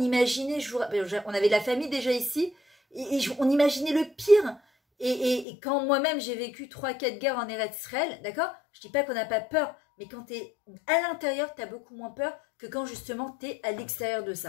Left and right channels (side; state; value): right; drops out; at 5.5 s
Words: on avait de la famille déjà ici, et on imaginait le pire. Et quand moi-même j'ai vécu 3-4 guerres en Eretz Israël, d'accord, je dis pas qu'on n'a pas peur, mais quand tu es à l'intérieur, tu as beaucoup moins peur que quand justement tu es à l'extérieur de